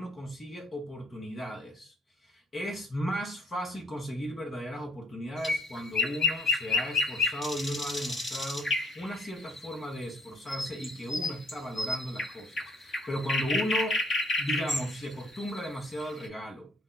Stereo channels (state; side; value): normal; both; correlation 0.62